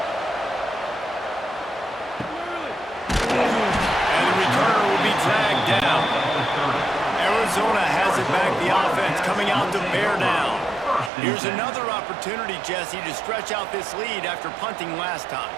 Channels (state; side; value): drops out; left; at 11.1 s